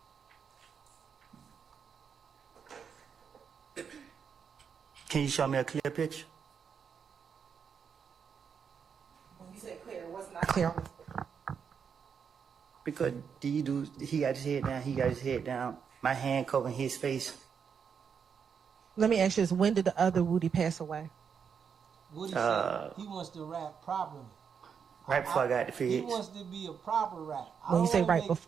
Can you show me a clear picture? When you say clear, what's not clear on this picture? Because he got his head down, he got his head down. My hand covering his face. Let me ask you this. When did the other Woody pass away? Woody said he wants to rap properly. Right before I got the feds. He wants to be a proper rap. When you say right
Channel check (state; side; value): quieter; left; 6.8 dB